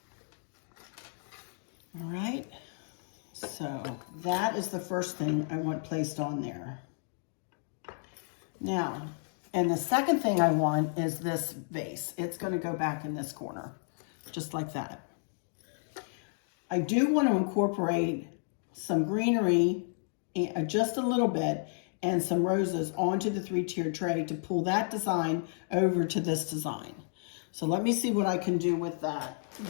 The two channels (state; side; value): silent; right; 56 dB below the other